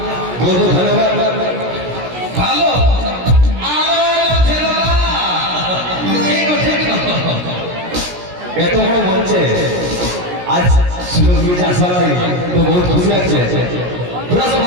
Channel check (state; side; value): late; left; 17 ms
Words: বলবো ধন্যবাদ ভালো এত বড় মঞ্চে আজ সুযোগ দিয়েছে আসা তো বহুত খুশি লাগছে। তোরা সব